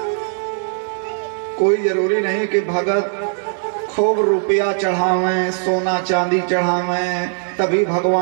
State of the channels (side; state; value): left; silent; 61 dB below the other